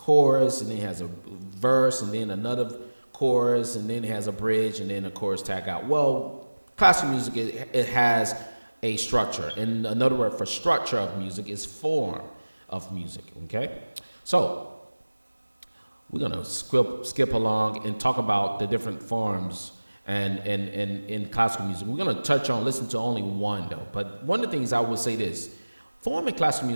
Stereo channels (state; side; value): inverted; both; correlation -1.00